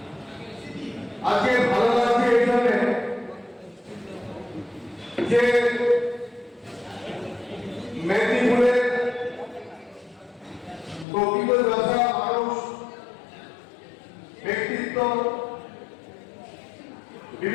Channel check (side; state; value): right; drops out; at 11.1 s